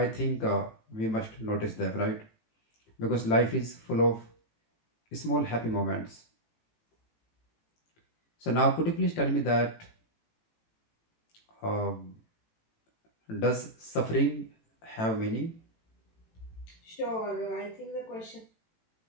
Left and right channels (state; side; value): late; right; 18 ms